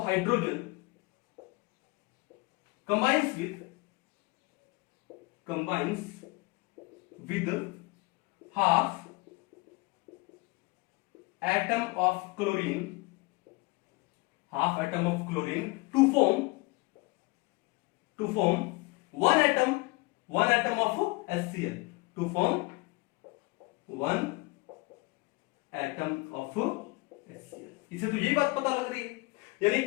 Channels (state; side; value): quieter; right; 25.1 dB